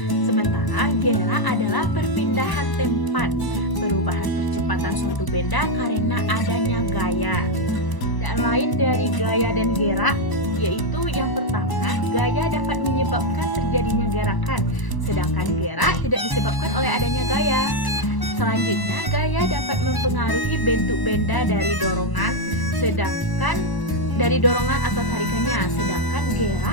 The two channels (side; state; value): right; late; 1.0 ms